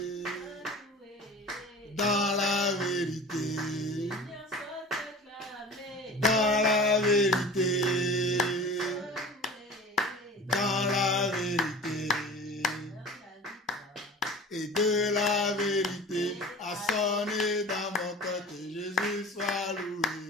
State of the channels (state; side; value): normal; both; correlation 0.38